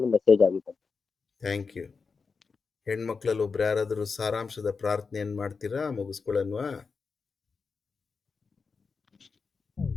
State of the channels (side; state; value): right; quieter; 4.9 dB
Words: ಮೆಸೇಜ್ ಆಗಿದೆ. Thank you. ಹೆಣ್ಮಕ್ಳಲ್ಲಿ ಒಬ್ರು ಯಾರಾದರೂ ಸಾರಾಂಶದ ಪ್ರಾರ್ಥನೆಯನ್ನು ಮಾಡ್ತೀರಾ? ಮುಗಿಸ್ಕೊಳ್ಳನ್ವಾ?